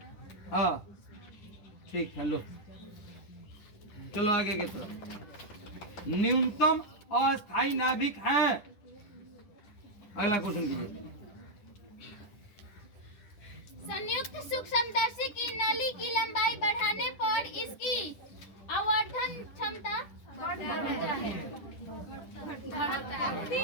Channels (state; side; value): late; right; 10 ms